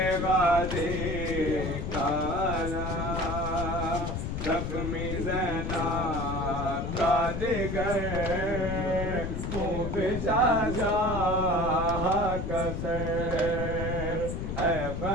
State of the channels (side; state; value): left; noise; rumble, 3 dB below the sound